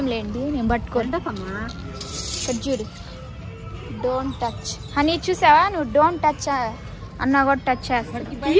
లేండి, నేను పట్టుకోండి. ఇక్కడ చూడు, డోంట్ టచ్ అని చూసావా నువ్వు. డోంట్ టచ్ అన్నా కూడా టచ్ చేస్తాడు.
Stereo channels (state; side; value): identical; both; correlation 1.00